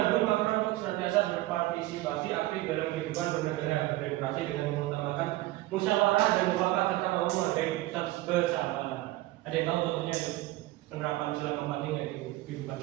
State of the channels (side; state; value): left; quieter; 17.6 dB